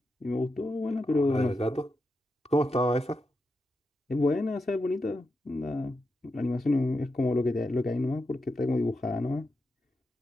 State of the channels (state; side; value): normal; both; correlation 0.87